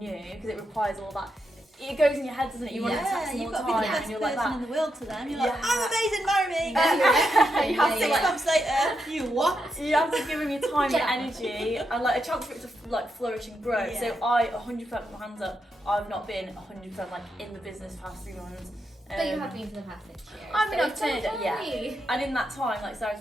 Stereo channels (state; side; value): normal; both; correlation 0.83